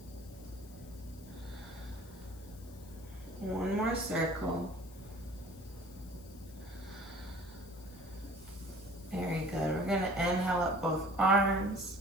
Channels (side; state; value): left; noise; hiss, 22 dB below the sound